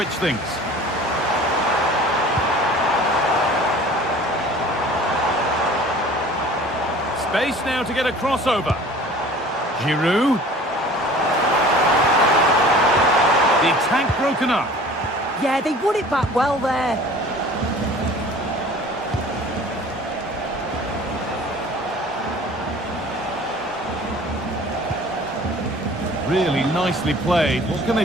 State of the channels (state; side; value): normal; both; correlation 0.46